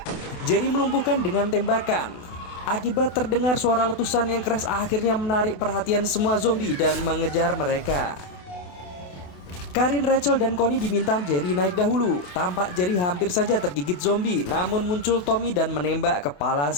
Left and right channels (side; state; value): right; late; 28 ms